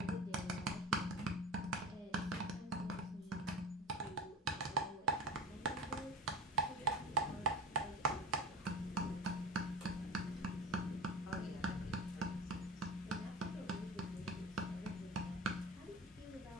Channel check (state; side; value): normal; both; correlation 0.31